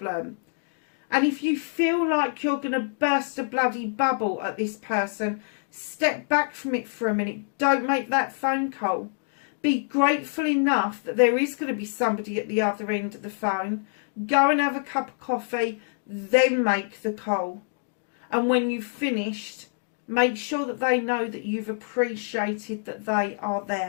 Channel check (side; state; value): right; silent; digital silence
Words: And if you feel like you're going to burst a bloody bubble at this person, step back from it for a minute. Don't make that phone call. Be grateful enough that there is going to be somebody at the other end of the phone. Go and have a cup of coffee, then make the call. And when you've finished, make sure that they know that you've appreciated that they are